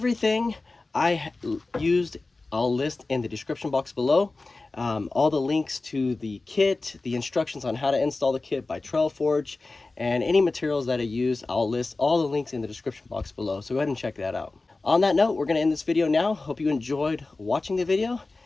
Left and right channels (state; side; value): quieter; right; 3.4 dB